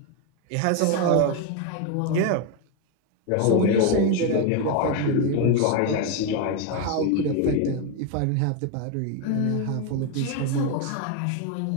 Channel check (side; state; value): both; different; correlation 0.02